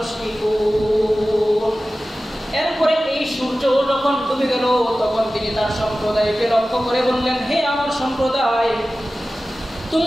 এরপরে এই সূর্য যখন ডুবে গেল তখন তিনি তার সম্প্রদায়কে লক্ষ্য করে বললেন, হে আমার সম্প্রদায়,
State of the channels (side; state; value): both; normal; correlation 0.96